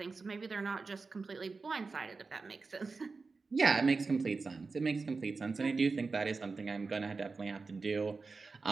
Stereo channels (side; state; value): left; quieter; 4.2 dB